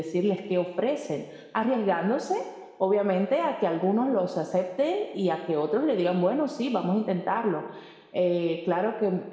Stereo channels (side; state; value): both; identical; correlation 1.00